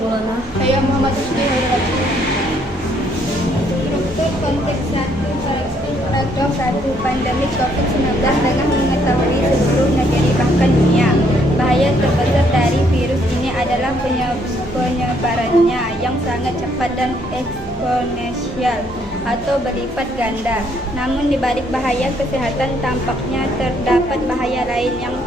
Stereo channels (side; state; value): right; noise; hum, 19 dB below the sound